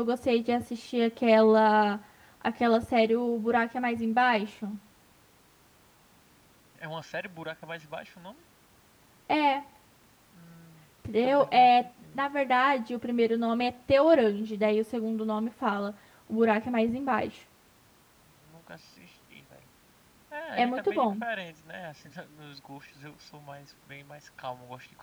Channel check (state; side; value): identical; both; correlation 1.00